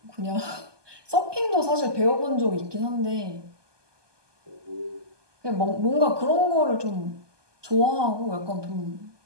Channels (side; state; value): left; late; 1.2 ms